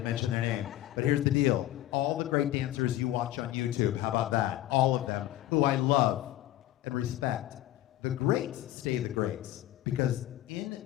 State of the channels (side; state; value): right; quieter; 14.3 dB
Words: mention their name. But here's the deal. All the great dancers you watch on YouTube, how about that? All of them, who I love and respect. The greats stay the greats, because in